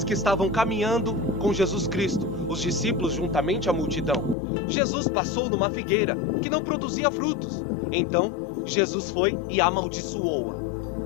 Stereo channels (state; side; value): drops out; right; at 4.4 s